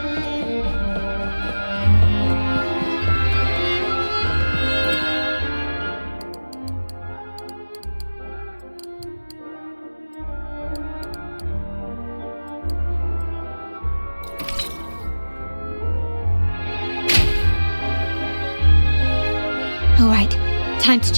All right, time to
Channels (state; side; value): inverted; both; correlation -1.00